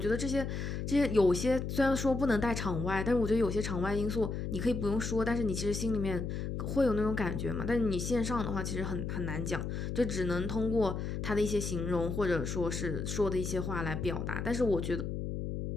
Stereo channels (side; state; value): left; noise; hum, 3 dB below the sound